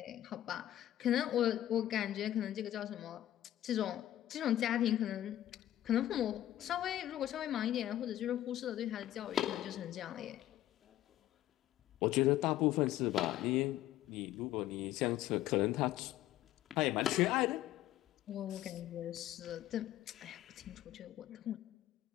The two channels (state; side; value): quieter; right; 13.2 dB